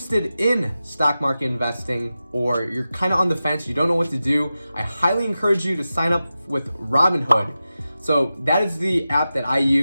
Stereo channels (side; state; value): both; inverted; correlation -0.93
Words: in stock market investing, or you're kind of on the fence, you don't know what to do, I highly encourage you to sign up with Robinhood. So that is the app that I